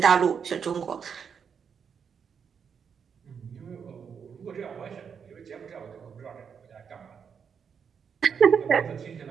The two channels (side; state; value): left; quieter; 6.9 dB